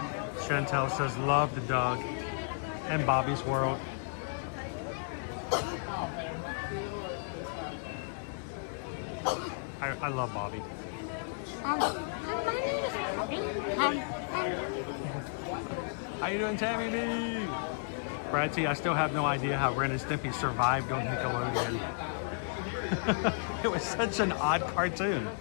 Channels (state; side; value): silent; right; digital silence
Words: Chantel says, love the Doug. And Bobby's World. I love Bobby. How you doing, Tammy B? Brad T, I still have no idea how Ren and Stimpy survived on Nickelodeon. It was such an odd cartoon.